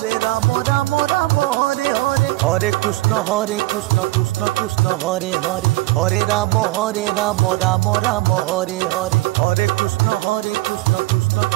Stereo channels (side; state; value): left; quieter; 19.4 dB